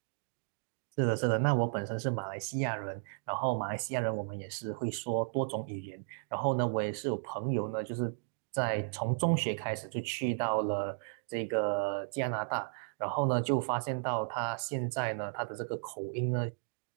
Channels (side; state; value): left; silent; digital silence